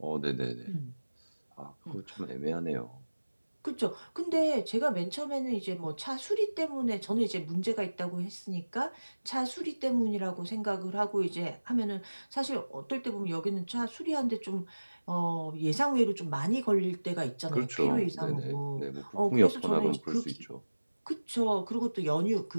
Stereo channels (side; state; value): both; inverted; correlation -1.00